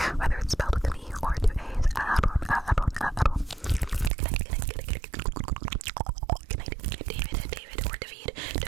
whether it's spelled with an E or two A's. Aaron. Good night, David, or David, or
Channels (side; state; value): left; drops out; at 4.1 s